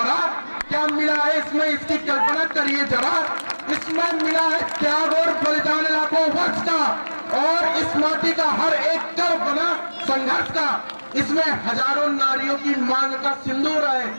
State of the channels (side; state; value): both; inverted; correlation -1.00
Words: क्या मिला है इसमें इसकी कल्पना करिए जरा। इसमें मिला है त्याग और बलिदान लाखों वर्ष का, और इस माटी का हर एक कर्म बना संघर्ष का। इसमें हजारों नारियों की मांग का सिंदूर है,